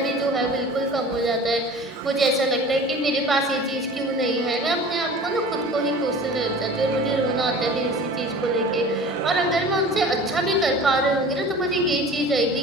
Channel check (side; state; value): both; normal; correlation 0.41